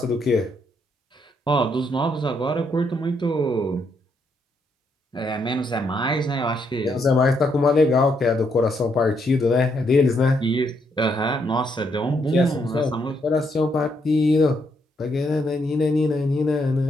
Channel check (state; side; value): normal; both; correlation 0.75